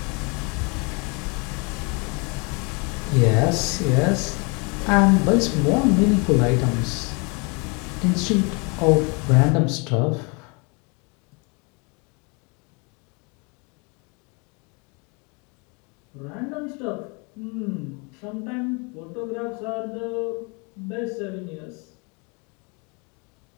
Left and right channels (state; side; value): quieter; right; 31.8 dB